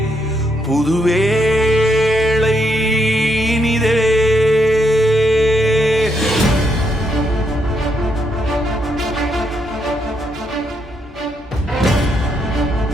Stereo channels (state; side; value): normal; both; correlation 0.76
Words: புது வேளை இனிதே.